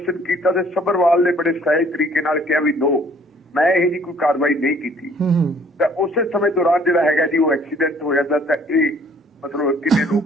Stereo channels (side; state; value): both; normal; correlation 0.57